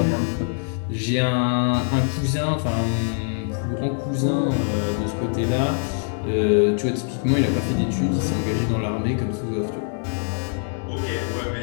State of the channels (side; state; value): right; silent; 63 dB below the other